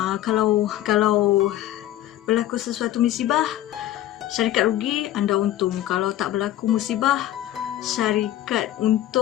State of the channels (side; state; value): right; quieter; 13.4 dB